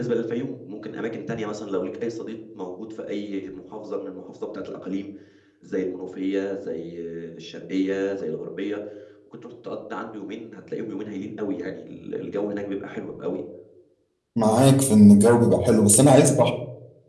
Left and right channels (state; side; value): identical; both; correlation 1.00